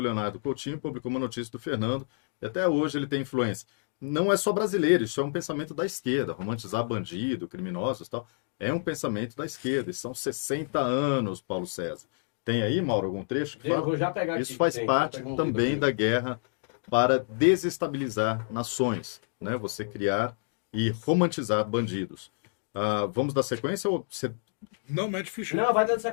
Leonardo Coutinho publicou uma notícia do Fernando e até hoje ele tem influência. não é só brasileiro, isso é um pensamento da esquerda, romantizar bandido, criminosos e tal, é um pensamento da esquerda, e são 60 anos, Paulo César. Tem aí, Mauro, algum trecho que Eu fala? vou já pegar aqui. Isso faz parte também da guerra para desestabilizar nações, né? Você criar e romantizar bandidos. Vamos dar sequência ou você... Não, mete ficha. Não, vai dando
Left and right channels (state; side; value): silent; right; digital silence